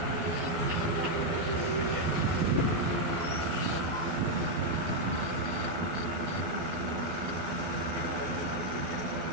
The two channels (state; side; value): late; left; 12 ms